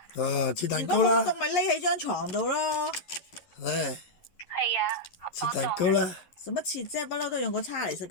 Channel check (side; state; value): right; late; 11 ms